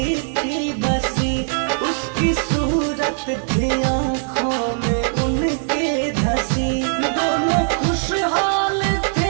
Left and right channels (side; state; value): left; silent; digital silence